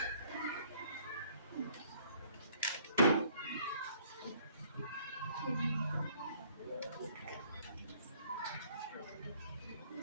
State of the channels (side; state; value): both; inverted; correlation -0.60